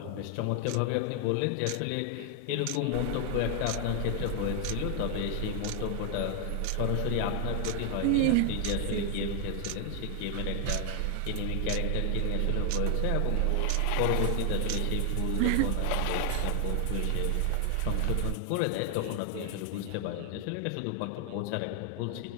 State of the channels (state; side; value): different; both; correlation 0.00